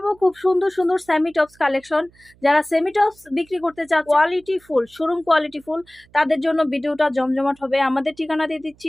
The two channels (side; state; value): right; noise; hum, 30 dB below the sound